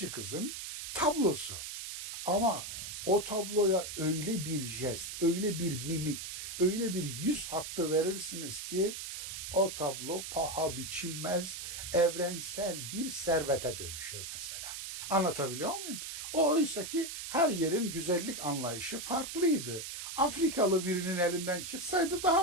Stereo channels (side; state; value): right; noise; hiss, 7 dB below the sound